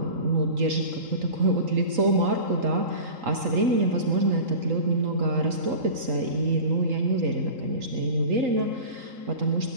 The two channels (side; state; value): left; late; 3.8 ms